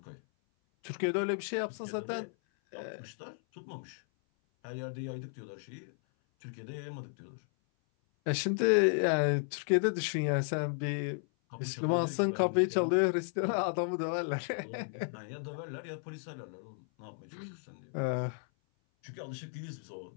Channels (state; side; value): silent; right; 55 dB below the other